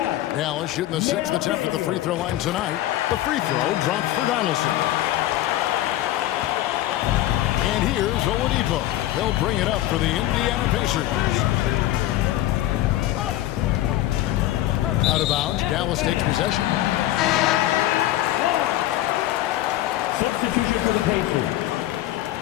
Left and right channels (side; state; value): right; quieter; 14.6 dB